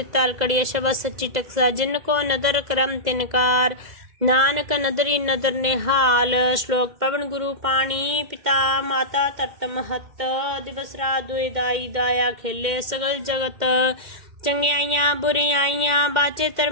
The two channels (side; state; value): left; late; 2.1 ms